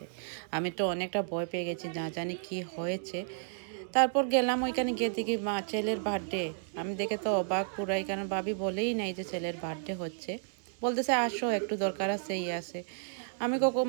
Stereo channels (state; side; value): silent; left; digital silence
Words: আমি তো অনেকটা ভয় পেয়ে গেছি, না জানি কি হয়েছে। তারপর গেলাম, ওইখানে গিয়ে দেখি মা ছেলের বার্থডে। আমি দেখে তো অবাক পুরাই, কারণ ভাবি বলেই নাই যে ছেলের বার্থডে হচ্ছে। বলতেছে আসো, একটু দরকার আছে, আছে। আমি